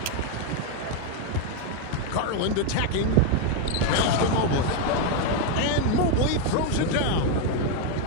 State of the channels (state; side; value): different; both; correlation 0.01